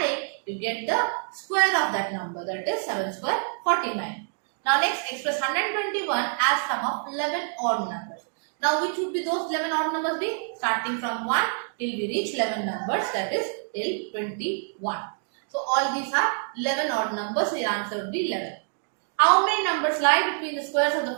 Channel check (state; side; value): silent; left; 59 dB below the other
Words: you get the square of that number. That is 7 square 49. Now next, express 121 as sum of 11 odd numbers. Now which would be those 11 odd numbers be? Starting from 1 till we reach 11 numbers, that is till 21. So all these are 11 odd numbers. The answer would be 11. How many numbers lie between the squares of the